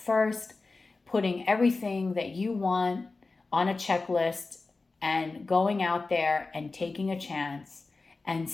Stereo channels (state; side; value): quieter; right; 3.7 dB